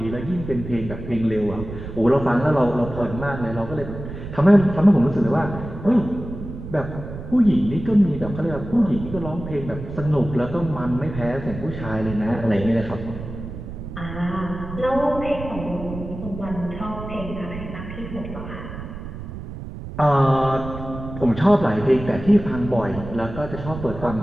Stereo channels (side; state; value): right; noise; rumble, 10 dB below the sound